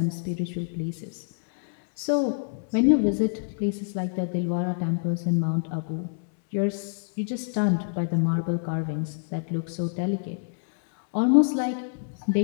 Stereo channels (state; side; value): silent; right; digital silence